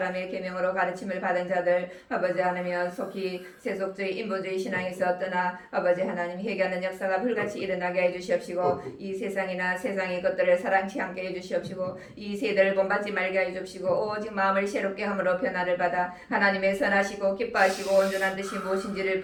계명으로 가르침을 받은 자들 아버지 하나님 속히 세속주의 인본주의 신앙에서 떠나 아버지 하나님 회개하는 역사가 불같이 일어나게 해주시옵시고 이 세상이나 세상의 것들을 사랑치 않게 해주시옵시고 이 세대를 본받지 말게 해주시고 오직 마음을 새롭게 함으로 변화를 받아 하나님의 선하시고 기뻐하시고 온전한 뜻이 무엇인지를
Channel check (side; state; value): both; identical; correlation 1.00